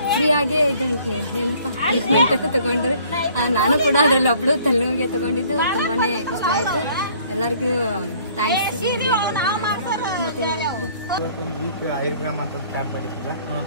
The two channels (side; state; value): both; inverted; correlation -0.58